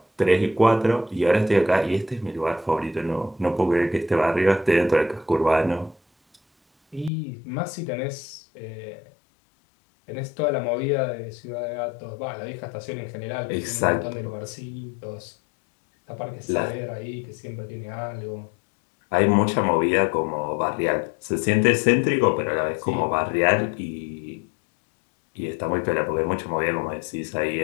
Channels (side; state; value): right; drops out; at 7.1 s